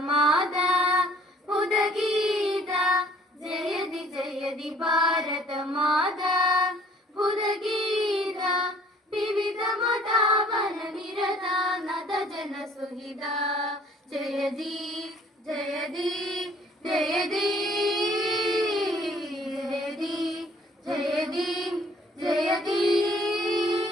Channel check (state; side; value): normal; both; correlation 0.57